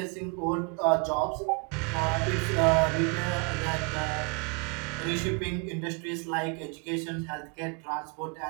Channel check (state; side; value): quieter; left; 33.3 dB